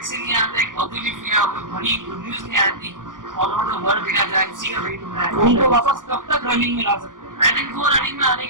नहीं आता, एक पॉजिटिव या कोई बड़ी गुड न्यूज नहीं आती ऑल ओवर द वर्ल्ड देखा जाए, उसी का वेट हो रहा है। उनको वापस कब तक रनिंग में ला सकते हैं? आई थिंक वो रनिंग में आने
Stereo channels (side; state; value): left; late; 0.89 ms